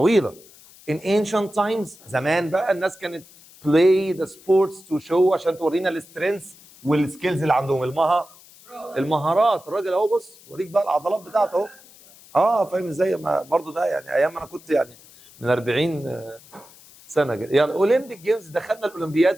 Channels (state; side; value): noise; left; hiss, 24 dB below the sound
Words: in ancient times، زمان بقى الناس كانت play the sports to show، عشان تورينا السترينث والسكيلز اللي عندهم، المهارات. الراجل اهو بص وريك بقى العضلات بتاعته اهو. فاهم ازاي؟ برضه ده يعني ايام انا كنت يعني من 40 سنه كده. يعني اولمبيك جيمز، دخلنا